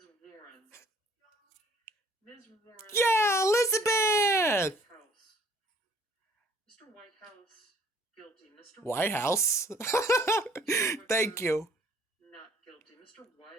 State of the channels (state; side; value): normal; both; correlation 0.57